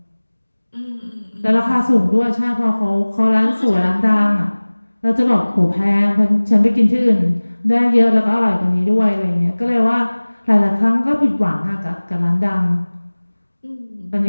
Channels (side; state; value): both; inverted; correlation -1.00